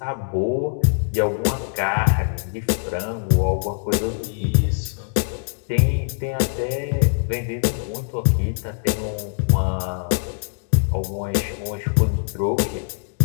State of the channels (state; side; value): silent; right; digital silence